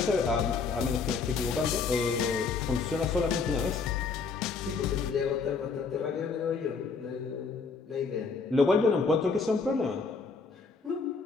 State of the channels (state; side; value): quieter; right; 4.8 dB